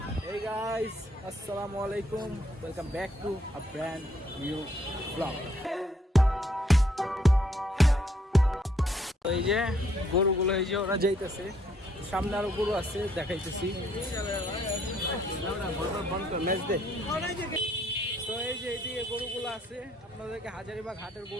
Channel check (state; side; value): normal; both; correlation 0.68